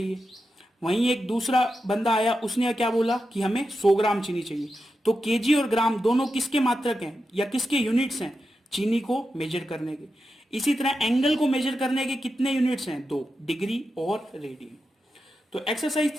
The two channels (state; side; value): normal; both; correlation 0.89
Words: वहीं एक दूसरा बंदा आया, उसने क्या बोला कि हमें 100 ग्राम चीनी चाहिए। तो केजी और ग्राम दोनों किसके मात्रक हैं या किसके यूनिट्स हैं, चीनी को मेजर करने के। इसी तरह एंगल को मेजर करने के कितने यूनिट्स हैं, 2, डिग्री और रेडियन। तो एक्सरसाइज